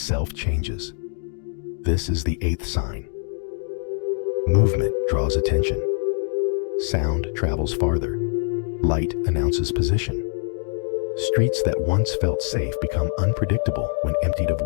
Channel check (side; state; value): right; silent; 60 dB below the other